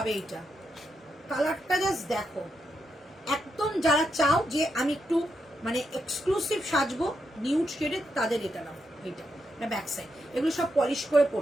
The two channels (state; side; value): normal; both; correlation 0.83